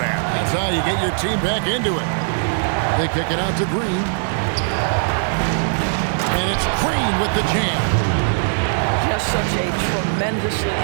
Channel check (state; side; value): silent; left; digital silence